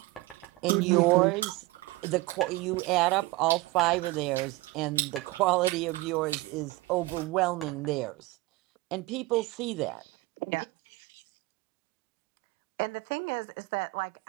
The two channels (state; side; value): quieter; left; 20.2 dB